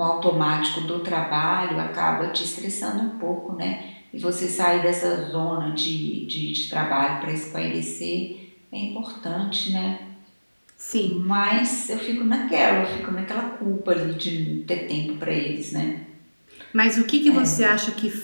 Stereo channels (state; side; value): inverted; both; correlation -1.00